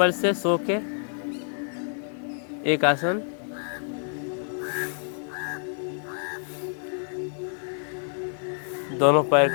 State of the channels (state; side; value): silent; right; 60 dB below the other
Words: से सो के एक आसन। दोनों पैर